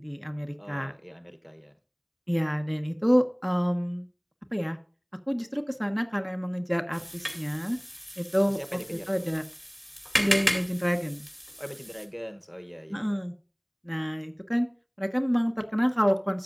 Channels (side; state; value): both; identical; correlation 1.00